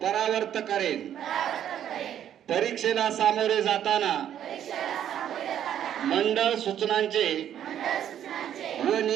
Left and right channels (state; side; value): quieter; left; 10.3 dB